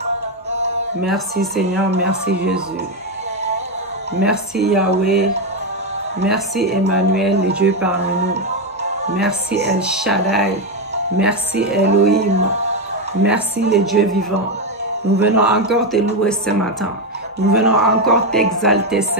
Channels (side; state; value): both; normal; correlation 0.08